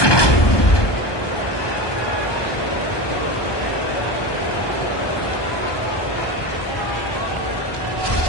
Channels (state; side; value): late; right; 1.2 ms